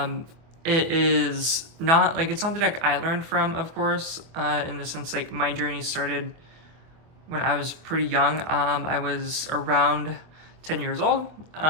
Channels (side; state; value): left; late; 25 ms